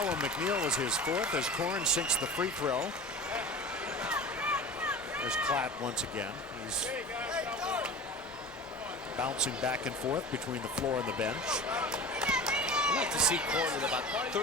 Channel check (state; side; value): normal; both; correlation 0.35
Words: on McNeil was his fourth as Korn sinks the free throw. There's Klatt once again. He's bouncing back and forth between the floor and the bench. I'd like to see Korn with about